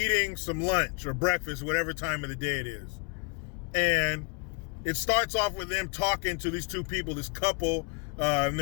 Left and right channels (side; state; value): right; quieter; 33.3 dB